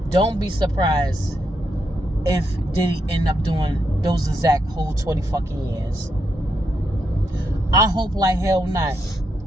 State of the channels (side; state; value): both; normal; correlation 0.81